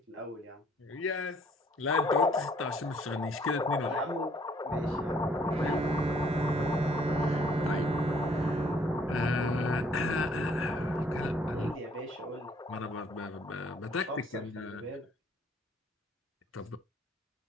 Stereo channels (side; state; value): both; normal; correlation 0.62